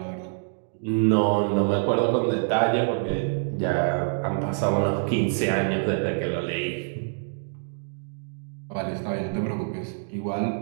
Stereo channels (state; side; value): silent; left; digital silence